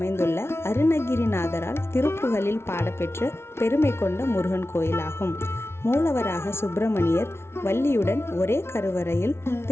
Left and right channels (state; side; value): late; right; 0.12 ms